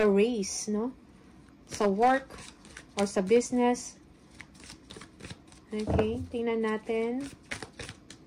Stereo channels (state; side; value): identical; both; correlation 1.00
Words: race, no? Sa work or sa business. Okay, tingnan natin.